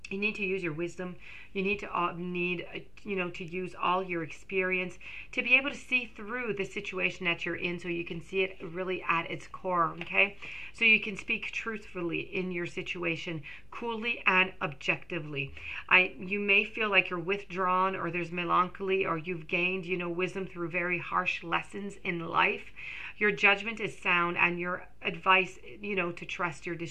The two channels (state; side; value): noise; left; hum, 25 dB below the sound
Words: You need to use your wisdom. You need to use all your experience to be able to see through the situation that you're in, so you can see it really at its core, okay? So you can speak truthfully in your situation, coolly and objectively. You may feel like you're withdrawn, or there's melancholy, or you've gained, wisdom through very harsh lessons in life. Your judgment is sound, and your advice, to trust your